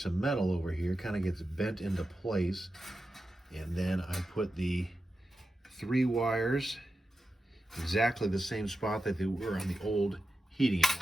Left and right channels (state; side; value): normal; both; correlation 0.91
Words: of metal over here, kind of gets bent into place. And then I put the 3 wires exactly the same spot that they were on the old heating